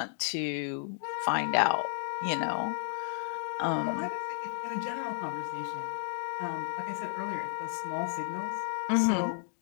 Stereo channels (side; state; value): right; silent; digital silence